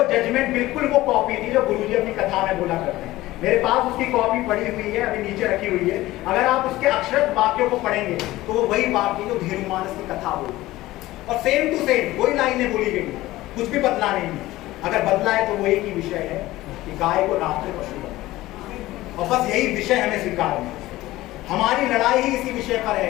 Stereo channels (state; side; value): quieter; right; 17.2 dB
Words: जजमेंट बिल्कुल वो कॉपी थी जो गुरुजी अपनी कथा में बोला करते हैं। मेरे पास उसकी कॉपी पड़ी हुई है, अभी नीचे रखी हुई है। अगर आप उसके अक्षरशः वाक्यों को पढ़ेंगे तो वो वही वाक्य जो धेनुमानस की कथा बोली और सेम टू सेम वही लाइनें बोली गई, कुछ भी बदला नहीं है। अगर बदला है तो वो एक ही विषय है कि गाय को राष्ट्रीय पशु बनाओ, और बस यही विषय हमें स्वीकार है। हमारी लड़ाई ही इसी विषय पर